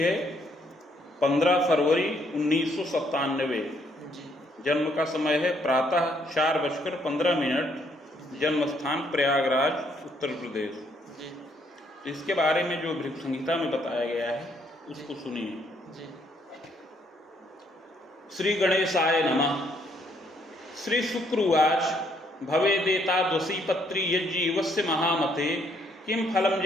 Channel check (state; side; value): normal; both; correlation 0.69